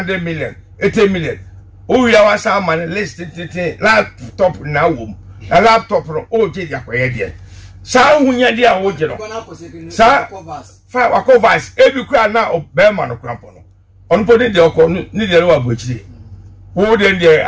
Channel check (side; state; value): both; identical; correlation 1.00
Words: million, 80 million. Oh, ya was a man list laptop na wom. A laptop no oji ya kwaye die. Sa hunya dia oji no. Sa fa wakovas ebi kwa na obema no krampo no onu podi de okọ ni de wa bochire wo de de